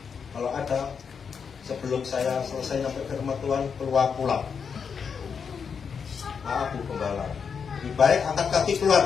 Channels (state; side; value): quieter; right; 6.3 dB